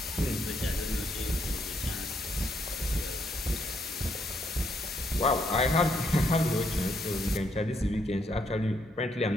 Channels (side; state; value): both; normal; correlation 0.74